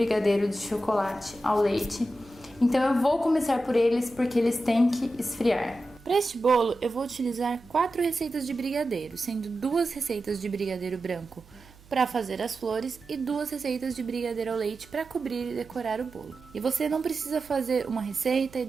de chocolate ao leite. Então eu vou começar por eles porque eles têm que esfriar. Para este bolo, eu vou utilizar 4 receitas de brigadeiro, sendo 2 receitas de brigadeiro branco para fazer as flores e 2 receitas de brigadeiro ao leite para cobrir e decorar o bolo. E você não precisa fazer uma receita e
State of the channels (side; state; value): right; noise; hum, 24 dB below the sound